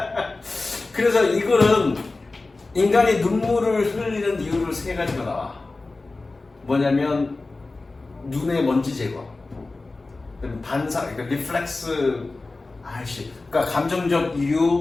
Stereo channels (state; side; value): quieter; right; 3.4 dB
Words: 그래서 이 글은 인간이 눈물을 흘리는 이유를 세 가지가 나와. 뭐냐면 눈의 먼지 제거, 반사, 그러니까 리플렉스, 그러니까 감정적